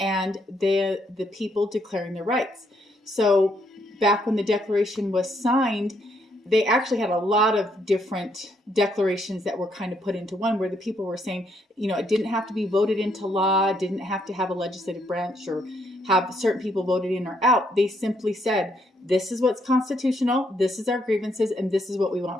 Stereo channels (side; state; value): both; normal; correlation 0.73